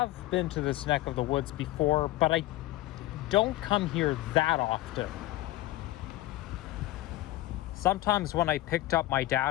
been to this neck of the woods before, but I don't come here that often. Sometimes when I picked up my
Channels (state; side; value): quieter; right; 16.7 dB